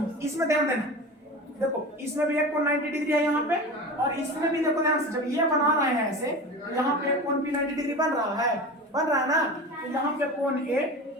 इसमें ध्यान देना, देखो इसमें भी एक कोण 90 डिग्री है यहाँ पे, और इसमें भी देखो ध्यान से जब ये बना रहे हैं ऐसे, तो यहाँ पे कोण भी 90 डिग्री बन रहा है ना, तो यहाँ पे कोण ए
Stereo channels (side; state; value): both; normal; correlation 0.31